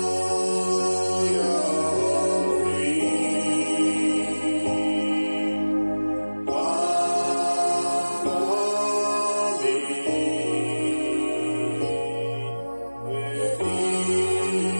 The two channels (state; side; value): inverted; both; correlation -1.00